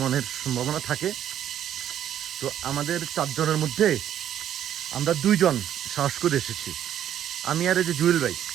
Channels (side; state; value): left; quieter; 10.6 dB